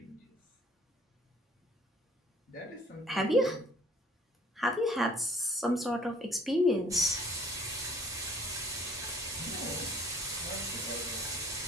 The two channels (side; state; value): both; normal; correlation 0.55